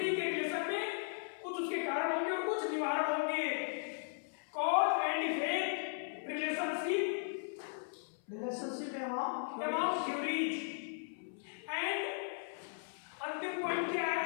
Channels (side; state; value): right; silent; 53 dB below the other